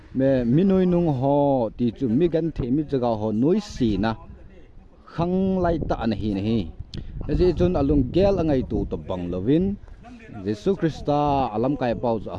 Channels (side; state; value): both; identical; correlation 1.00